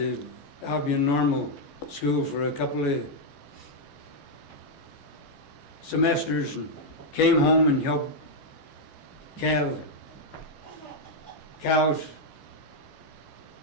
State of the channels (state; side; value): late; right; 14 ms